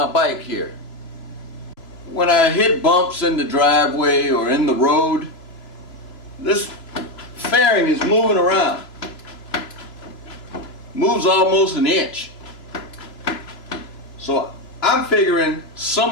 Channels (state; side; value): late; right; 3.0 ms